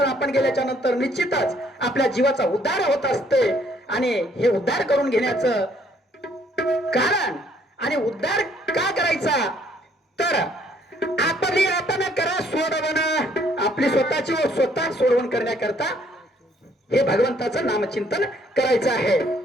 आपण गेल्याच्या नंतर निश्चितच आपल्या जीवाचा उद्धार होत असते. आणि हे उद्धार करून घेण्याचं कारण आणि उद्धार का करायचा तर आपली आपण करा सोडवण, आपली स्वतःची स्वतः सोडवण करण्याकरता हे भगवंताचं नामचिंतन करायचं आहे.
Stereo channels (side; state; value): both; normal; correlation 0.65